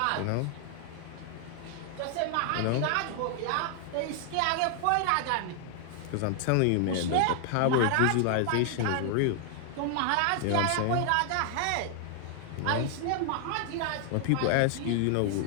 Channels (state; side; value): different; both; correlation 0.00